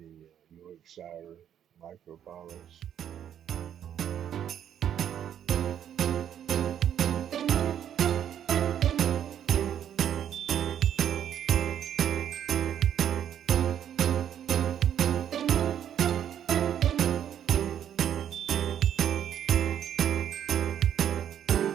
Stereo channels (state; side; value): quieter; left; 9.7 dB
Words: Yorkshire micro polish.